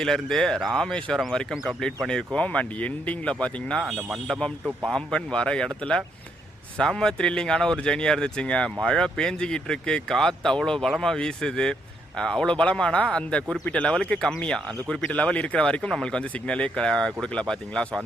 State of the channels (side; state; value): both; normal; correlation 0.75